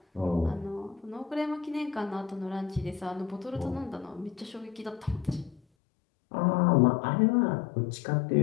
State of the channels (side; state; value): right; drops out; at 5.6 s